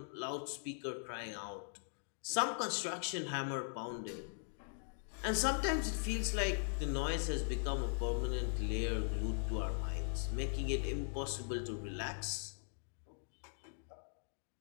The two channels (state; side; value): silent; right; digital silence